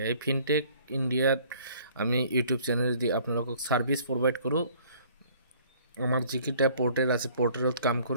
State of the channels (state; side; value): inverted; both; correlation -0.56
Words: এই ফিনটেক ইণ্ডিয়াত আমি ইউটিউব চেনেল দি আপোনালোকক ছাৰ্ভিচ প্ৰভাইড কৰোঁ। আমাৰ যিকেইটা পৰ্টেল আছে পৰ্টেলত কাম